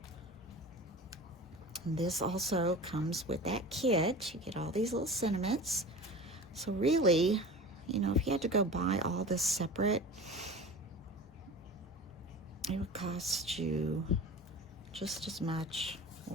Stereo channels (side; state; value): both; normal; correlation 0.35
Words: And this also comes with that kit. You get all these little sentiments. So really, you know, if you had to go buy all this separate, it would cost you just as much